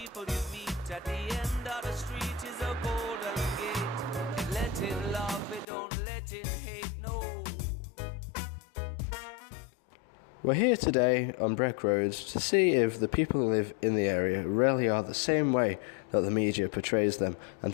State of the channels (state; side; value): drops out; right; at 5.7 s